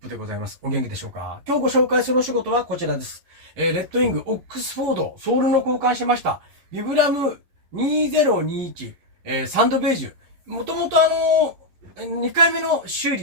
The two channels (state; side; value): late; left; 11 ms